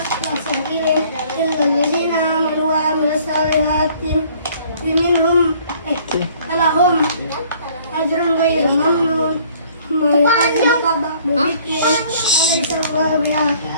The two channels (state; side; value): inverted; both; correlation -0.57